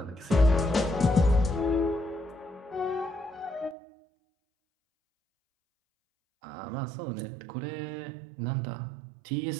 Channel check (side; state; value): left; drops out; at 3.8 s